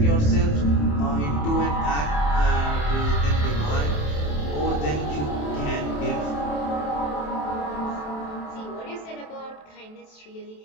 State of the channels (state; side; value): late; right; 27 ms